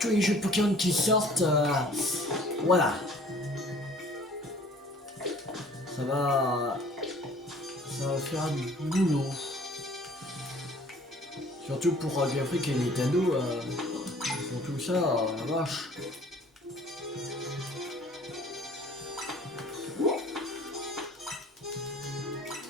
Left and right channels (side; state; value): both; normal; correlation 0.52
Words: les jeux Pokémon qui sortent, voilà. Ça va faire du boulot. Surtout pour Game Freak et Nintendo, pour tout ça, la vache.